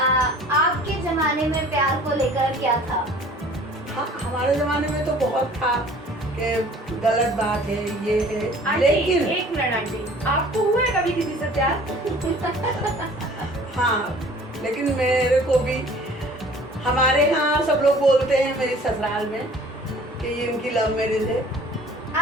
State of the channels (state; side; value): normal; both; correlation 0.49